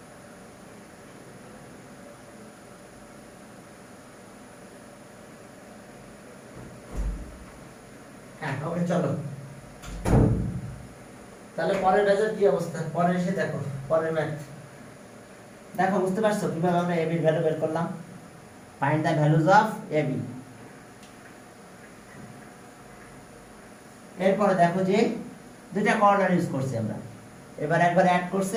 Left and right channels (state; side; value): identical; both; correlation 1.00